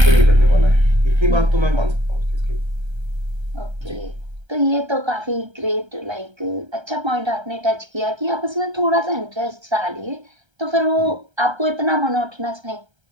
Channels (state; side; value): late; left; 1.3 ms